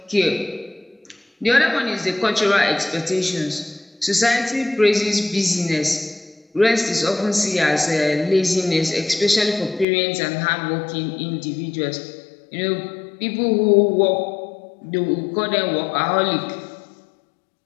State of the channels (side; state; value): right; drops out; at 9.9 s